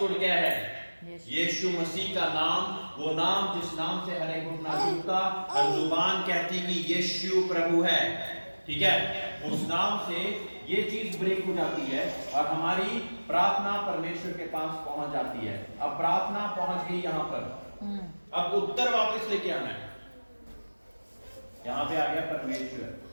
क्या है, यीशु मसीह का नाम, वो नाम जिस नाम से हर एक घुटना झुकता, हर जुबान कहती कि यीशु प्रभु है, ठीक है। उस नाम से ये चीज ब्रेक हो जाती है और हमारी प्रार्थना परमेश्वर के पास पहुंच जाती है। अब प्रार्थना पहुंच गई यहां पर, अब उत्तर वापस लेके आना है। यहां पे आ गया परमेश्वर।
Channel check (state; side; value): inverted; both; correlation -1.00